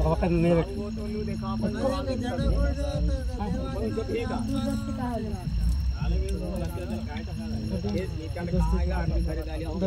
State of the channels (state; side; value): identical; both; correlation 1.00